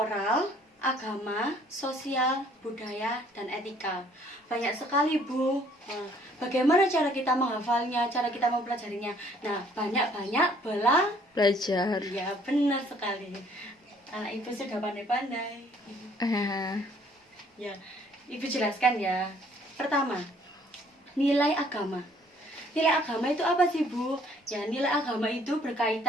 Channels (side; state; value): both; normal; correlation 0.60